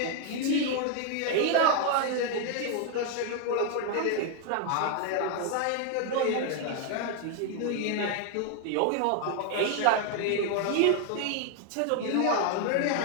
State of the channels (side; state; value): both; different; correlation 0.01